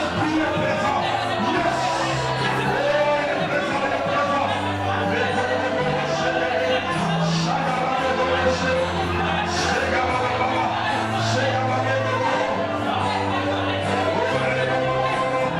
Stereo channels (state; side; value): identical; both; correlation 1.00